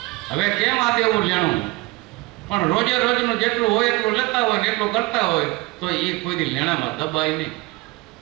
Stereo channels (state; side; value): quieter; left; 22.4 dB